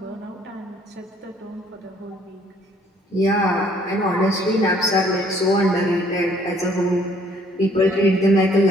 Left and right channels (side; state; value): both; normal; correlation 0.61